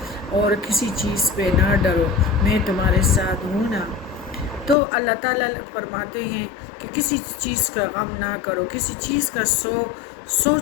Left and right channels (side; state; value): right; drops out; at 4.8 s